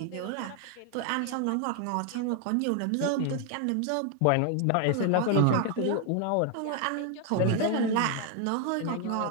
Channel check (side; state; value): both; different; correlation 0.01